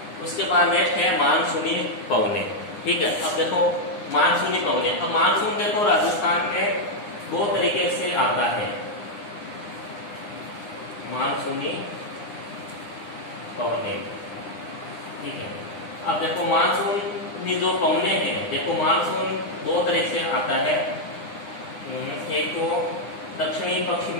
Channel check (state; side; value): late; right; 9.8 ms